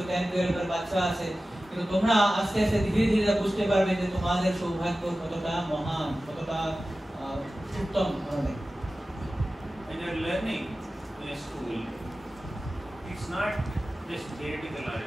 10, 12 এর বাচ্চা আছে, কিন্তু তোমরা আস্তে আস্তে ধীরে ধীরে বুঝতে পারবে যে তোমাদের সৌভাগ্য কতটা মহান, কতটা উত্তম ধরনের। When you are learning in a school, it's not just theoretical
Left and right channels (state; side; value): normal; both; correlation 0.95